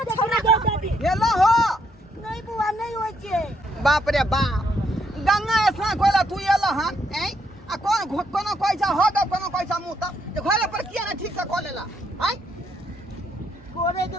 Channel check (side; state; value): both; normal; correlation 0.73